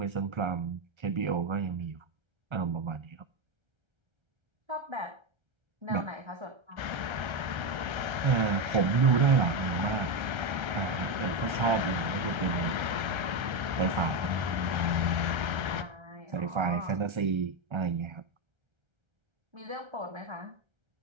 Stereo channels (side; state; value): left; late; 1.3 ms